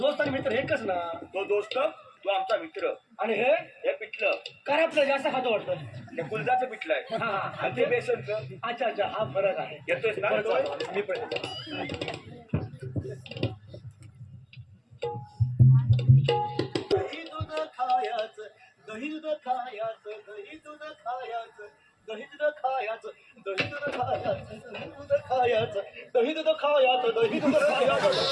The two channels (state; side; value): identical; both; correlation 1.00